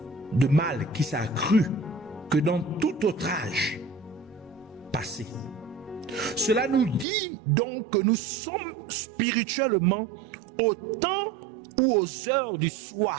de mal qui s'est accru que dans tout autre âge passé. Cela nous dit donc que nous sommes spirituellement au temps ou aux heures du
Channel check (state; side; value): drops out; left; at 7.1 s